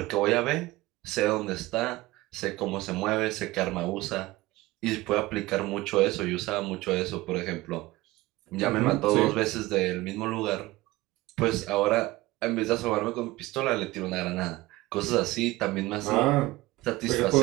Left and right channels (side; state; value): left; quieter; 19.2 dB